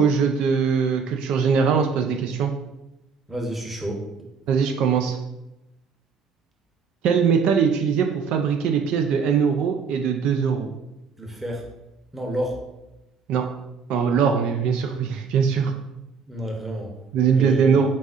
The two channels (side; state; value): left; quieter; 5.8 dB